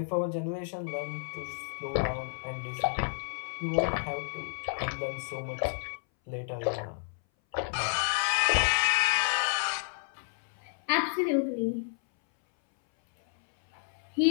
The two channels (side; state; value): right; silent; 57 dB below the other